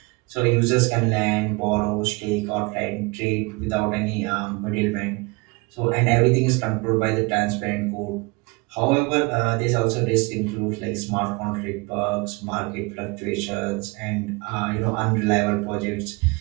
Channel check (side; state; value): left; quieter; 27.0 dB